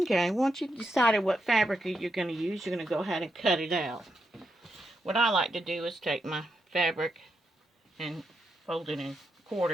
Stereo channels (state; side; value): normal; both; correlation 0.83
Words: once you've decided what fabric you're going to use, you're going to go ahead and cut it out. What I like to do is take my fabric and fold it in